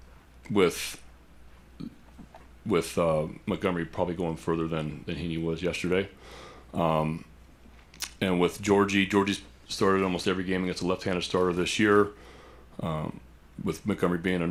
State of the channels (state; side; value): identical; both; correlation 1.00